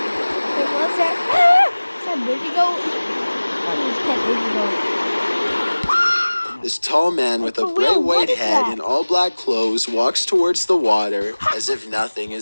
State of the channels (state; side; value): inverted; both; correlation -1.00